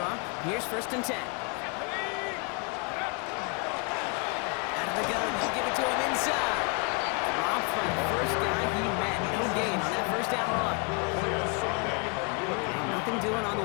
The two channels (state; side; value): quieter; right; 33.8 dB